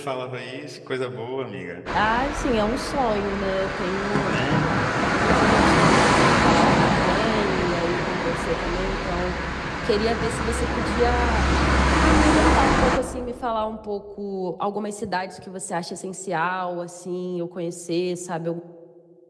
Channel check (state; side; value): identical; both; correlation 1.00